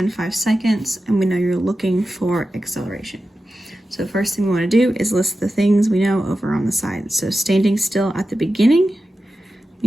seconds, and we know you're looking for acceleration. So the first thing we want to do is list the things we know over on the side. So standing still at the beginning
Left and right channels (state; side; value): normal; both; correlation 0.92